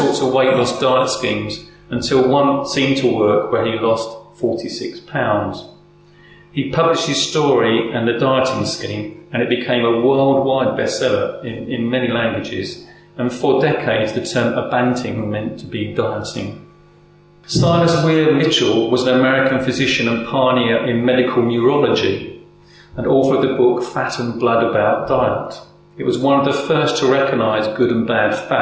of weight loss diet schemes until one seemed to work where he lost 46 pounds. He published his story and the dieting scheme, and it became a worldwide bestseller in many languages, and for decades the term abanting meant to be dieting. Silas Weir Mitchell was an American physician and pioneer in medical neurology, and author of the book Fat and Blood About Diet. It was one of the first to recognise good and bad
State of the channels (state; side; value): identical; both; correlation 1.00